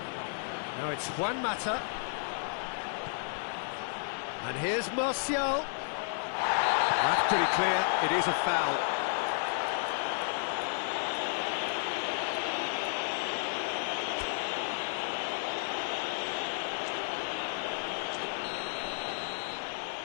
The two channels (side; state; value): right; silent; 56 dB below the other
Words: Now it's Juan Mata. And here's Martial. That's pretty clear, it is a foul.